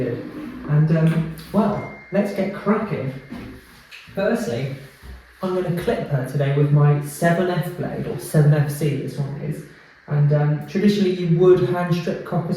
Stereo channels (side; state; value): both; identical; correlation 1.00